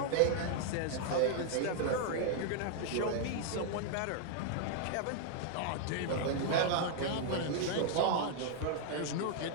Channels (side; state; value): both; different; correlation -0.01